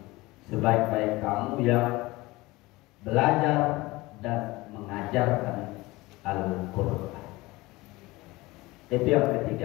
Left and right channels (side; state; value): right; quieter; 21.0 dB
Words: Sebaik-baik kamu yang belajar dan mengajarkan Al-Quran. Itu yang